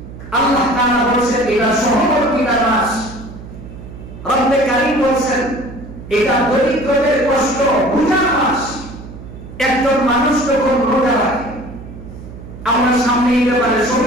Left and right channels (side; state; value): right; noise; hum, 14 dB below the sound